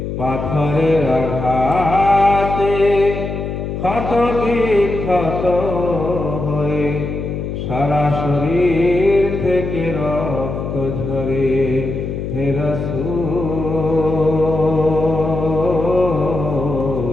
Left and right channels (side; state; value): left; noise; hum, 5 dB below the sound